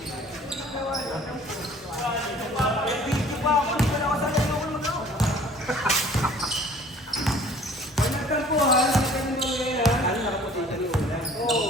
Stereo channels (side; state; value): both; normal; correlation 0.51